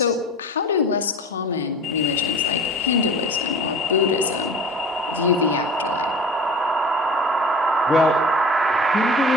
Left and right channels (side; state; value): both; normal; correlation 0.38